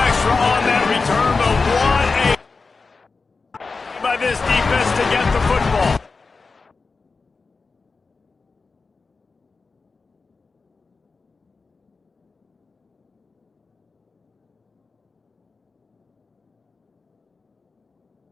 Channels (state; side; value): quieter; right; 4.3 dB